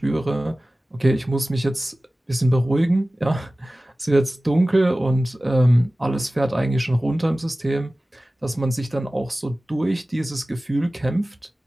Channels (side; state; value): both; normal; correlation 0.97